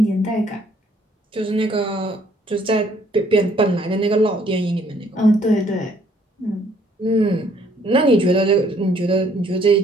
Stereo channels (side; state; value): both; normal; correlation 0.64